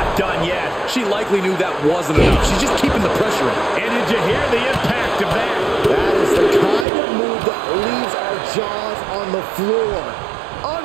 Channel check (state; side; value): drops out; left; at 6.9 s